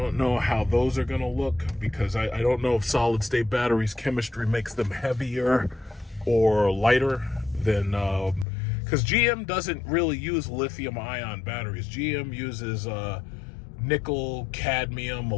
know how those are going to look, because I don't know if solid state batteries chemistry makes them heavier or lighter than, because GM doesn't really use lithium ion batteries. GM uses nickel, cadmium,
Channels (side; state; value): right; drops out; at 8.5 s